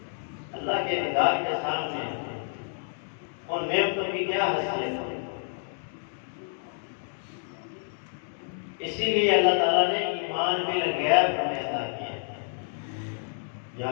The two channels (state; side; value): silent; right; 59 dB below the other